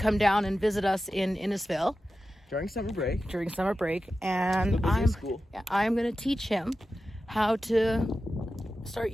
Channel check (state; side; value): normal; both; correlation 0.93